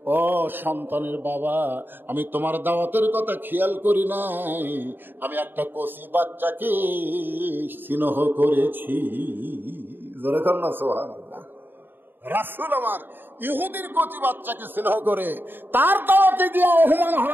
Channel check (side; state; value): left; late; 0.095 ms